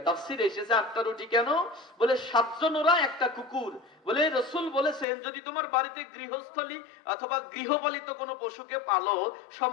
তাফসীরে এসেছে 8টা রুটি কেন? বলে 7 জন ওরা, একটা কুকুর। বলে রাসূল বলেছেন, যদি তোমার বাড়িতে গৃহস্থলী অথবা গৃহপালিত কোনো পশুকে পালো,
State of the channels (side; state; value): right; drops out; at 5.1 s